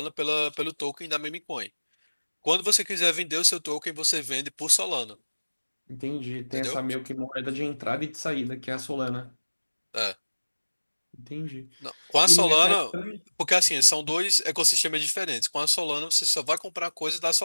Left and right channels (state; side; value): inverted; both; correlation -1.00